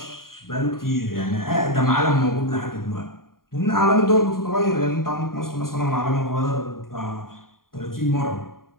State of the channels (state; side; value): late; right; 0.91 ms